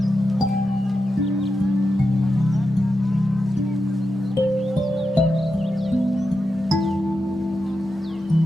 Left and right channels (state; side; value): normal; both; correlation 0.89